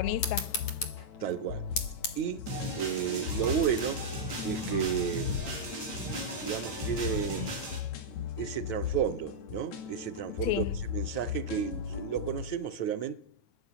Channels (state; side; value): late; right; 9.0 ms